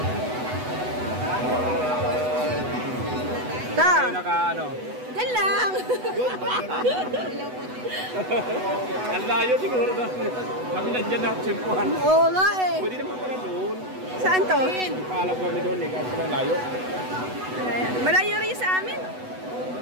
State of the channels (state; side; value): late; left; 8.0 ms